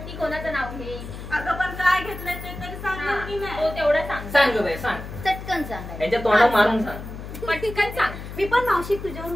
ती कोणाचं नाव घे अगं पण काय घेतलंय ते तरी सांगा की तो नाही. तेवढं सांग सांग गं बाई सांग चटकन सांगायचं. यांच्या तोंडात मारून सांग पटकन सांग मी पण मावशी तुझ्यावर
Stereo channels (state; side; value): noise; left; hum, 10 dB below the sound